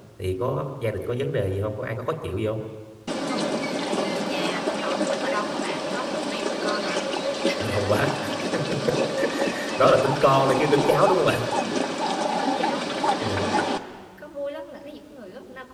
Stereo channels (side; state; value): both; identical; correlation 1.00